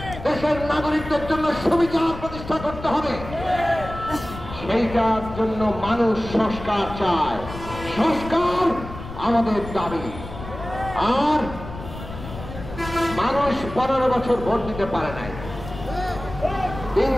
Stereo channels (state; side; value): noise; left; rumble, 11 dB below the sound